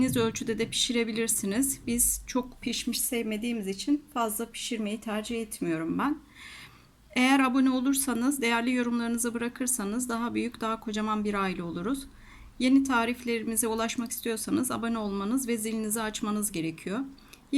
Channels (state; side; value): identical; both; correlation 1.00